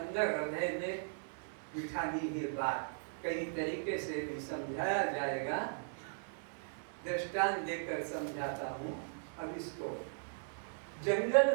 हृदय में बिठानी है बात। कई तरीके से भी समझाया जाएगा, दृष्टांत देकर समझाता हूँ। अब इसको, जंगल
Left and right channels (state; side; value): silent; left; digital silence